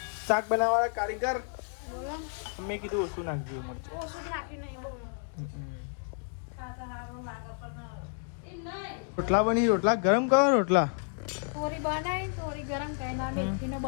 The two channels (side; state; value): right; silent; 57 dB below the other